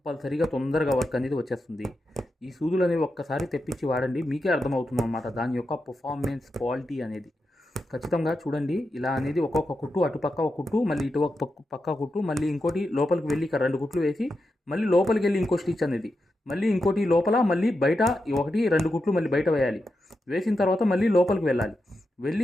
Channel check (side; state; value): both; normal; correlation 0.88